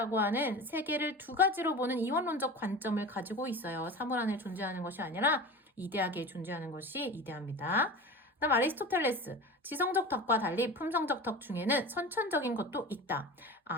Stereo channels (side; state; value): both; normal; correlation 0.33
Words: 하는 세계를 두 가지로 보는 이원론적 관점을 가지고 있어요. 사물 안에 존재하는 것이 아니라 이데아계에 존재하는 것이 이데아입니다. 그다음 아리스토텔레스. 지성적 덕과 달리 품성적 덕 중에는 선천적인 것도 있다.